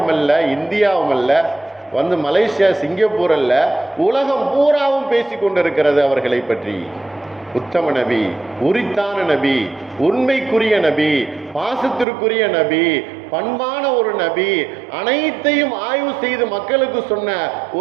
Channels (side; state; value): left; drops out; at 12.1 s